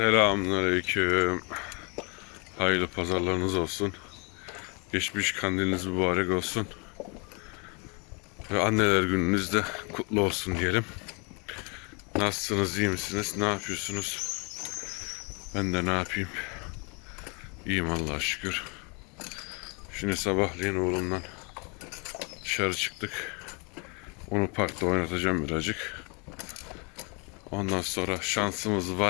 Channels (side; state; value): right; quieter; 32.8 dB